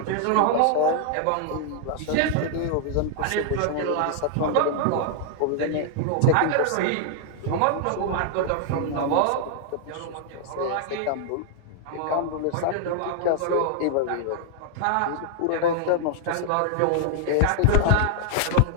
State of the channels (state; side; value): different; both; correlation 0.00